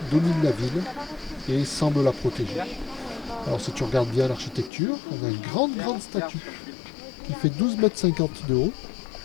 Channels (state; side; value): drops out; right; at 4.7 s